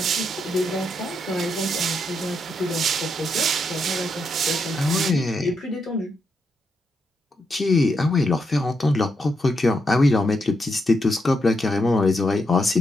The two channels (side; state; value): both; normal; correlation 0.81